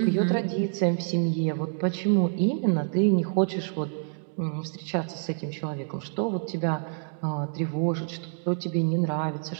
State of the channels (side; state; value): left; silent; 60 dB below the other